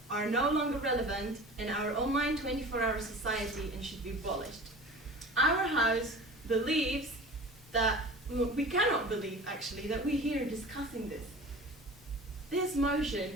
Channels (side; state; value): both; normal; correlation 0.38